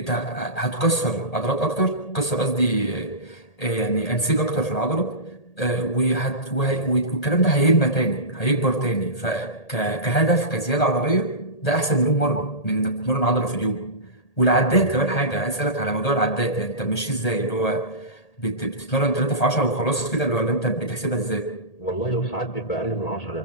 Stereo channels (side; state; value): right; late; 1.8 ms